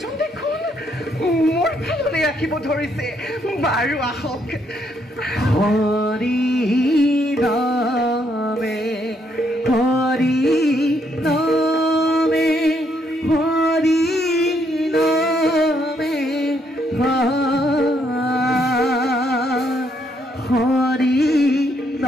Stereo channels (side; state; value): both; normal; correlation 0.73